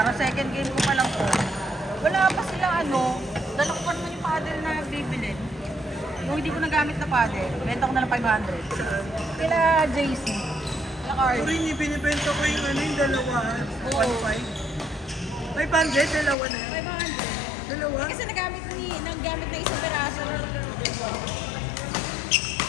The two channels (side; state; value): right; drops out; at 16.4 s